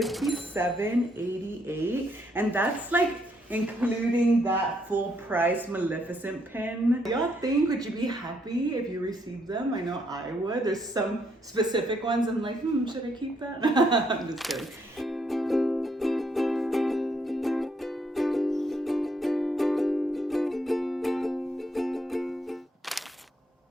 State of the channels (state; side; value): normal; both; correlation 0.73